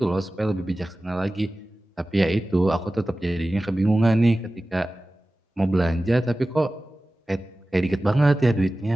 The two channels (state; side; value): normal; both; correlation 0.96